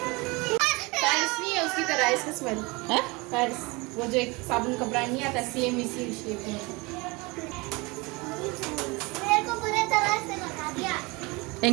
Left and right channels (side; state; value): left; quieter; 25.6 dB